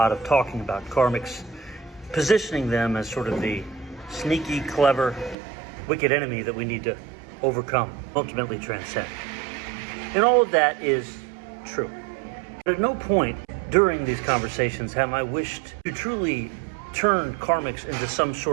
of talking about karmics, positioning them as sort of the sneaky, clever, wicked enemy that we need to overcome, ultimately transcend. And all of that is true. But at no point during these conversations have I wished to truly turn karmics into some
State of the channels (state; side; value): drops out; left; at 5.4 s